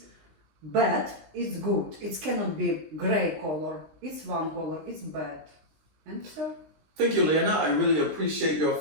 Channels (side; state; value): left; late; 20 ms